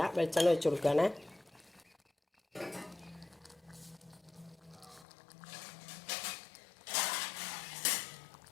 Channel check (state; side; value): drops out; right; at 5.1 s